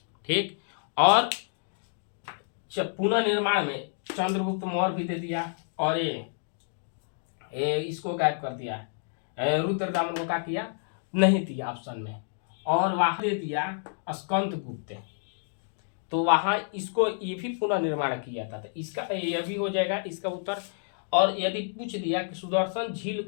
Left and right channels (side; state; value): right; silent; digital silence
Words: ठीक, और पुनः निर्माण में चंद्रगुप्त मौर्य भी दे दिया, और ये इसको गायब कर दिया, रुद्रदामन को क्या किया, नहीं दिया ऑप्शन में, और वहां दे दिया स्कंद गुप्त, तो वहां इसको ये भी पुनः निर्माण किया था। तो इसका ये भी हो जाएगा इसका उत्तर। और यदि पूछ दिया कि सुदर्शन झील